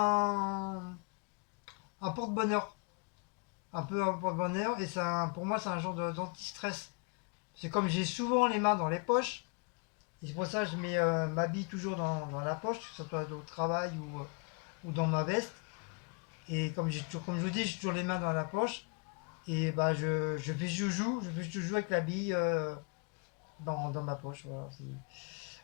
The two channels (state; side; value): quieter; right; 34.8 dB